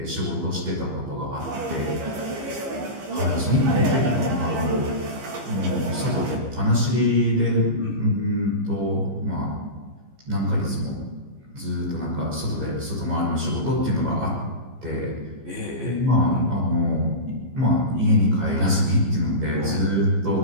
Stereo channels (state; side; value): late; left; 15 ms